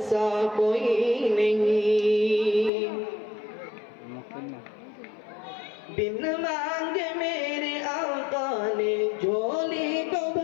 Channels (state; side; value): drops out; right; at 2.7 s